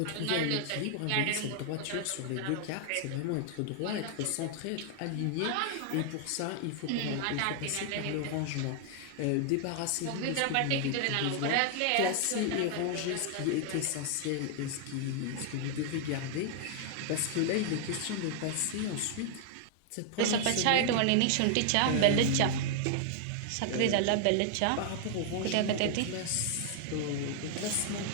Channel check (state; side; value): different; both; correlation 0.00